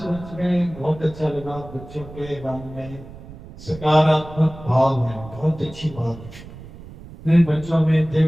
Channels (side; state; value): right; noise; rumble, 16 dB below the sound